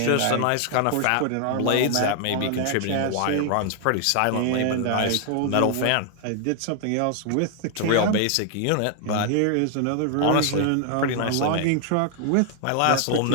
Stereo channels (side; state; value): both; different; correlation 0.00